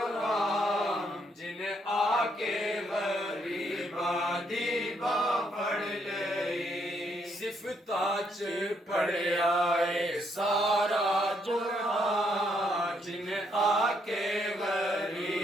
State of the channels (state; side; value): normal; both; correlation 0.73